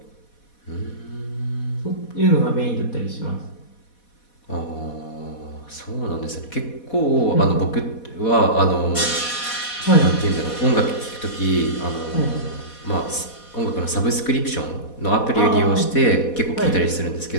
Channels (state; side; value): late; right; 4.1 ms